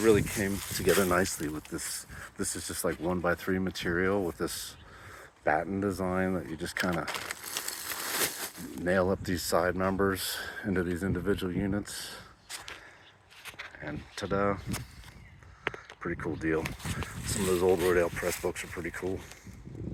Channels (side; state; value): both; identical; correlation 1.00